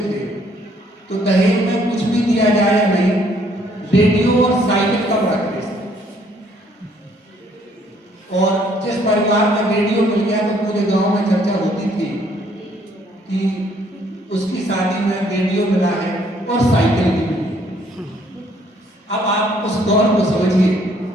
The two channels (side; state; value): both; normal; correlation 0.65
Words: थे तो दहेज में कुछ भी दिया जाए या नहीं, रेडियो और साइकिल का बड़ा क्रेज था। और जिस परिवार में रेडियो मिल गया तो पूरे गांव में चर्चा होती थी कि उसकी शादी में रेडियो मिला है और साइकिल भी मिली। अब आप उस दौर को समझिए।